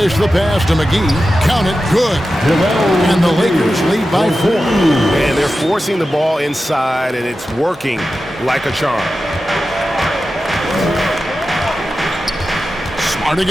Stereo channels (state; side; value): normal; both; correlation 0.92